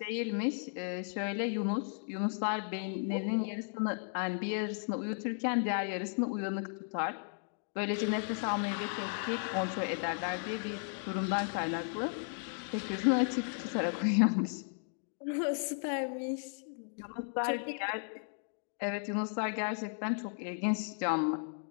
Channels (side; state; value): right; silent; 54 dB below the other